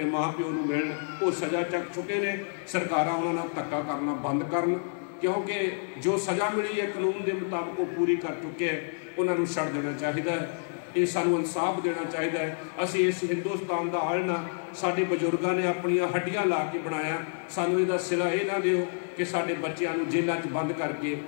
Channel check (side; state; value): right; silent; 59 dB below the other